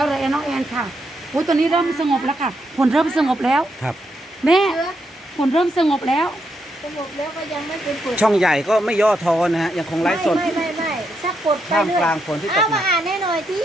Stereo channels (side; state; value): both; normal; correlation 0.80